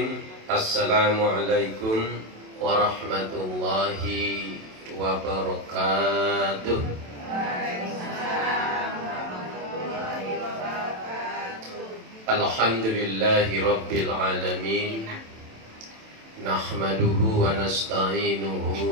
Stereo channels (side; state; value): left; late; 27 ms